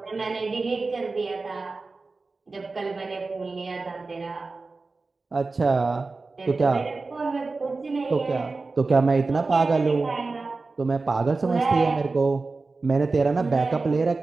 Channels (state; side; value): quieter; left; 3.8 dB